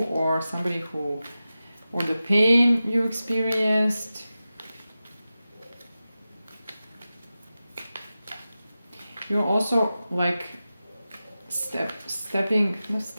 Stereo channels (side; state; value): both; inverted; correlation -0.94